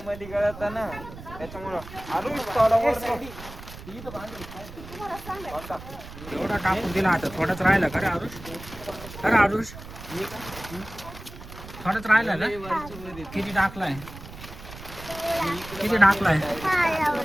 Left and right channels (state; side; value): noise; right; rumble, 14 dB below the sound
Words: मध्ये गळत ना त्याच्यामुळं आरुष थोडा वर एवढा टाकून दिला आता थोडाच राहिला का रे आरुष? अरे आरुष थोडाच राहिला का? किती टाकलाय? किती टाकलाय?